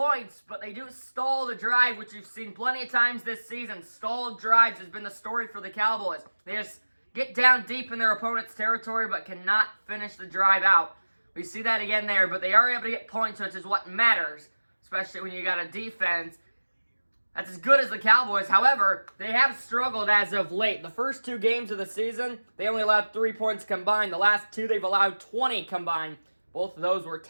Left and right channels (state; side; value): inverted; both; correlation -1.00